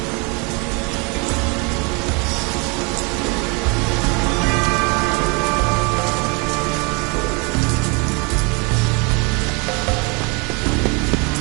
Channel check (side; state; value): left; quieter; 30.4 dB